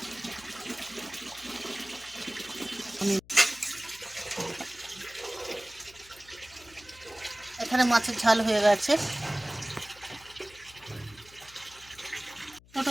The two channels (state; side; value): noise; left; hum, 24 dB below the sound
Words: এখানে মাছের ঝাল হয়ে গেছে।